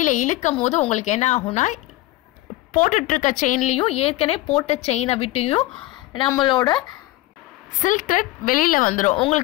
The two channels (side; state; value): right; quieter; 17.5 dB